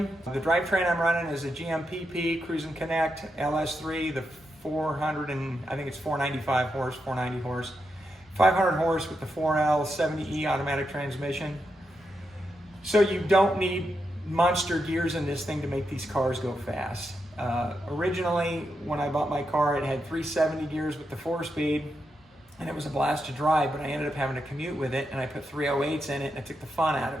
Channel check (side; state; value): both; normal; correlation 0.85